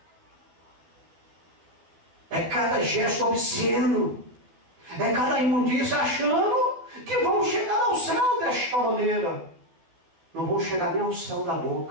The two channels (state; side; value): late; left; 12 ms